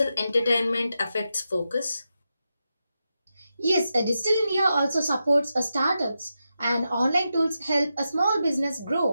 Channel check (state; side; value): inverted; both; correlation -0.88